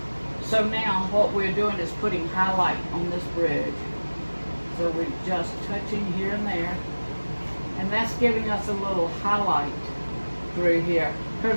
So now what we're doing is putting highlight on this bridge. So we're just touching here and there, and that's giving us a little highlight through here.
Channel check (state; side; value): inverted; both; correlation -1.00